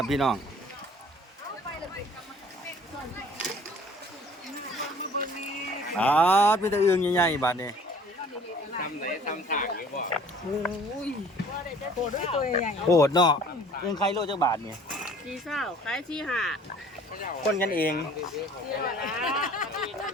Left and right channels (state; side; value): normal; both; correlation 0.51